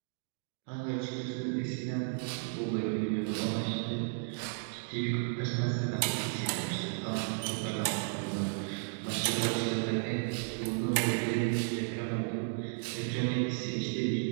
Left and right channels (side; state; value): left; silent; digital silence